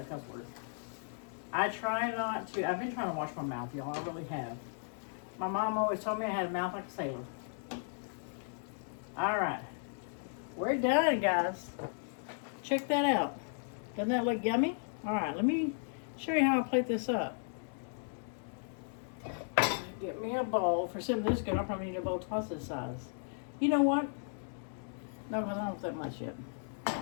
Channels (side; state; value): right; silent; digital silence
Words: a cuss word. I try not to. I've been trying to wash my mouth, y'all. I really have. My mom always told me I had a mouth like a sailor. All right, we're done, guys. Check that out. Doesn't that look yummy? All right, let me show you how I plate this up. Get me a bowl. For something this good, I'll probably need a bowl twice this size. You know what? No, because I don't have that much yet.